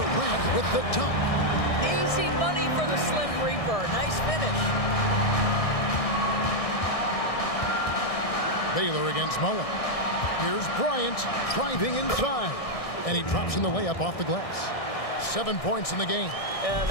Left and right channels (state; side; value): late; right; 1.6 ms